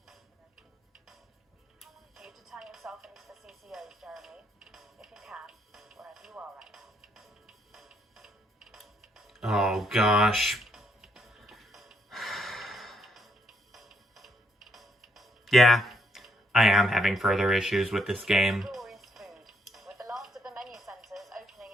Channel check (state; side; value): normal; both; correlation 0.74